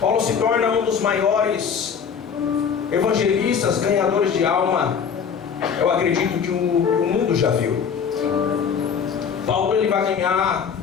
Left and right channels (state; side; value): quieter; right; 6.9 dB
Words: se torna um dos maiores evangelistas, ganhadores de alma, eu acredito que o mundo já viu. Paulo ele vai ganhar